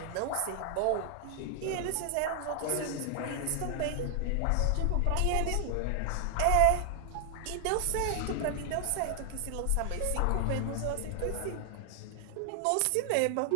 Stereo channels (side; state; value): both; different; correlation 0.00